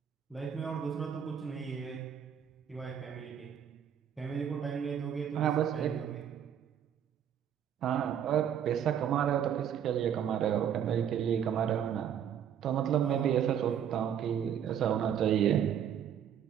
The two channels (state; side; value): quieter; left; 9.0 dB